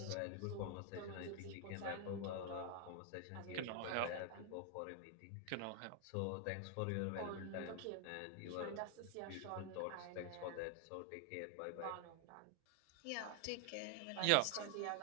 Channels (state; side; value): different; both; correlation 0.00